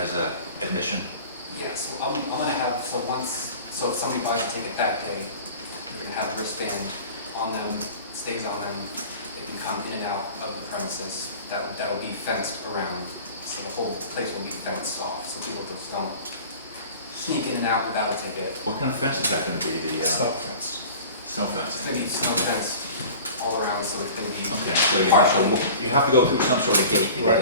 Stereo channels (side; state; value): both; inverted; correlation -0.41